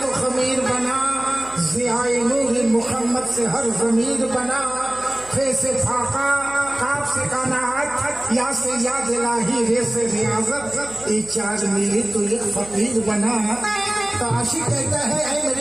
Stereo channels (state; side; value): noise; right; hum, 21 dB below the sound